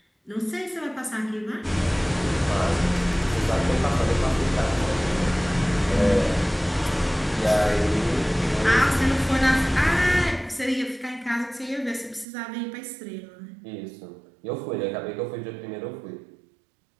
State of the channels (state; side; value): drops out; left; at 12.2 s